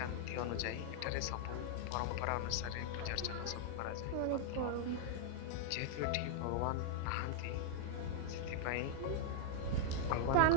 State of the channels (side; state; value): both; different; correlation 0.00